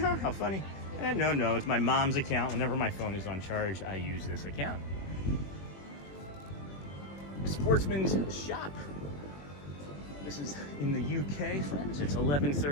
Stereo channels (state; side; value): late; right; 21 ms